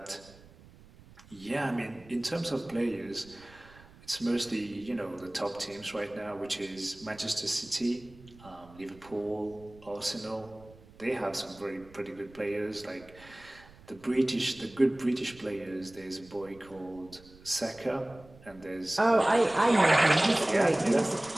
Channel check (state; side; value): noise; right; rumble, 23 dB below the sound